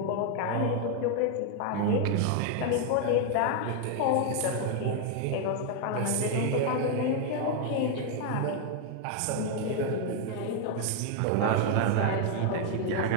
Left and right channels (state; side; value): different; both; correlation 0.01